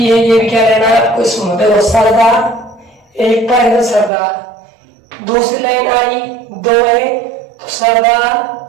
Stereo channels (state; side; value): drops out; left; at 4.1 s